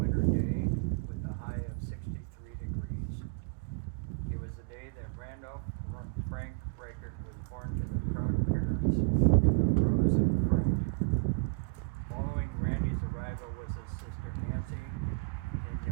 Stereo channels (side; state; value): left; quieter; 35.3 dB